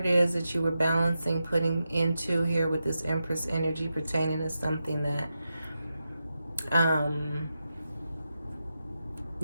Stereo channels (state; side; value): inverted; both; correlation -0.89